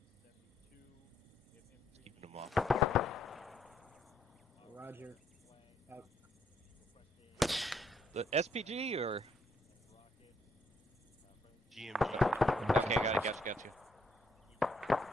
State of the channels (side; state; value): both; normal; correlation 0.70